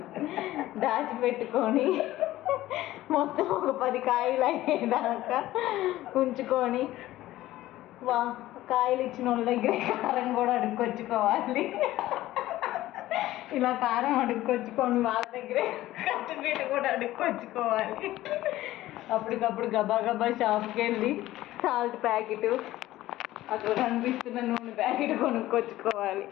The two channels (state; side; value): quieter; right; 15.6 dB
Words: దాచిపెట్టుకొని మొత్తం ఒక 10 కాయలు అయ్యేదాకా ఉంచుకొని కాయలు ఇచ్చిన వాళ్ళ దగ్గర కారం కూడా అడుక్కొచ్చుకోవాలి. ఇలా కారం అడుక్కొచ్చుకొని వాళ్ళ దగ్గరే కట్టుబెట్టు కూడా అడుక్కొచ్చుకోవాలి. అప్పటికప్పుడు గబా గబా షాప్కి వెళ్ళి సాల్ట్ ప్యాకెట్, అక్కడ కనిపిస్తున్న నూనె ప్యాకెట్ కొనుక్కొచ్చుకోవాలి.